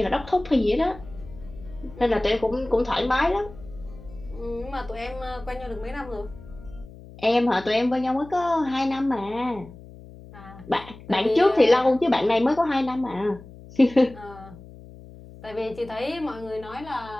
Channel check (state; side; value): noise; left; hum, 18 dB below the sound